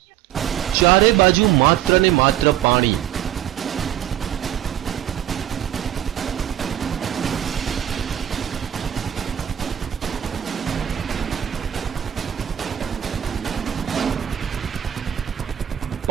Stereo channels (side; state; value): left; quieter; 11.2 dB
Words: ચારે બાજુ માત્ર ને માત્ર પાણી।